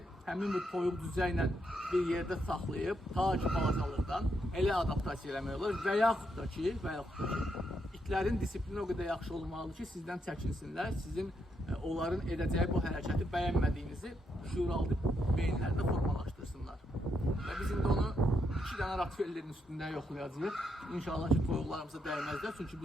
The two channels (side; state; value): both; normal; correlation 0.79